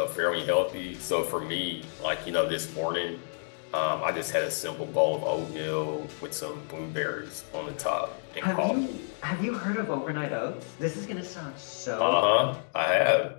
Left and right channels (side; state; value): right; silent; digital silence